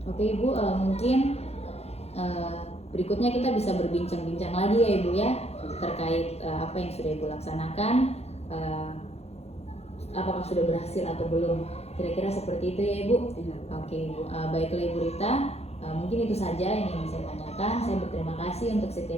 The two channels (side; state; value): right; late; 0.30 ms